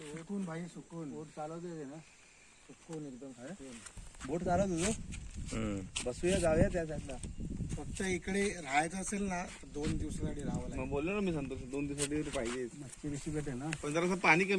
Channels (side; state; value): both; identical; correlation 1.00